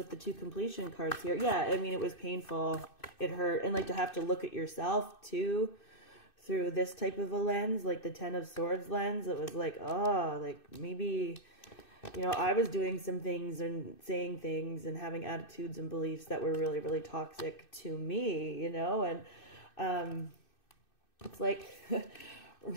the 2 completion cards here. Yeah, I mean, it was painful. It hurt. And like to have to look at yourself too through this type of a lens, like the 10 of Swords lens. It was like, oh, like maybe, you know, I was doing some things and saying things and having attitudes and beliefs that were really, really toxic to me, you know. And it's like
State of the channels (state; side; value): late; right; 2.6 ms